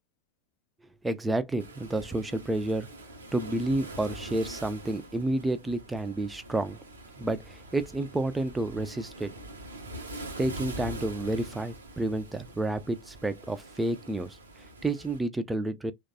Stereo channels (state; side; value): normal; both; correlation 0.78